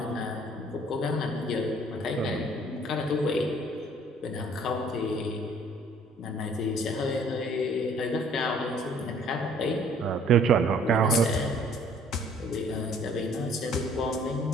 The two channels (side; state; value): both; normal; correlation 0.57